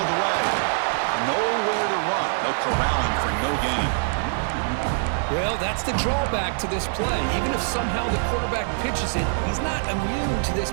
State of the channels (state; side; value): silent; left; 63 dB below the other